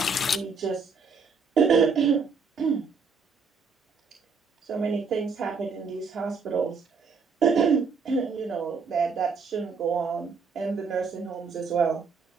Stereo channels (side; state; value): left; quieter; 4.9 dB